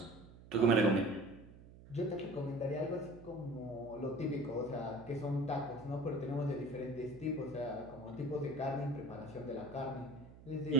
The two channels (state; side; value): noise; right; hum, 19 dB below the sound